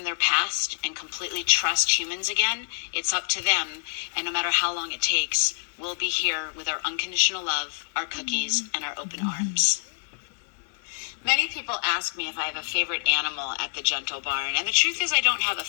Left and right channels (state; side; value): silent; right; digital silence